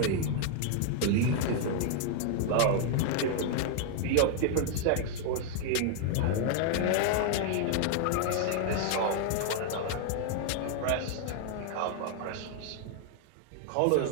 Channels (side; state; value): both; different; correlation 0.00